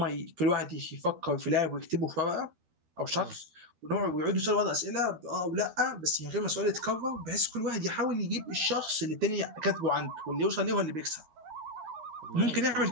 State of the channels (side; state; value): left; late; 13 ms